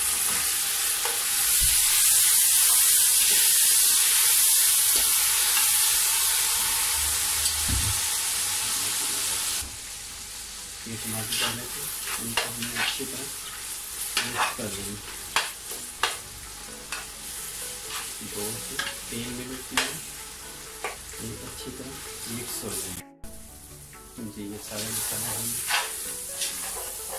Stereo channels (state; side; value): identical; both; correlation 1.00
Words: ये टमाटर डालने से इनको हमें अच्छी तरह मिक्स कर देंगे। 2 से 3 मिनट में ये अच्छी तरह मिक्स हो जाए। जी ये सारे मसाले हम